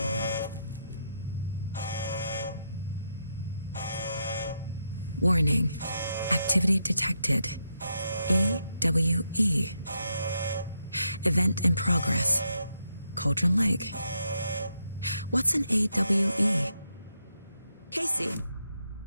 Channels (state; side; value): inverted; both; correlation -0.81